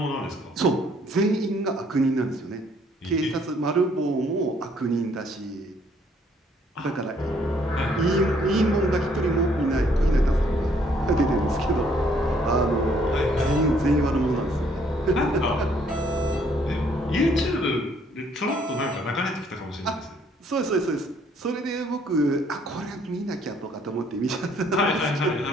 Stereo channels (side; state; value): both; normal; correlation 0.65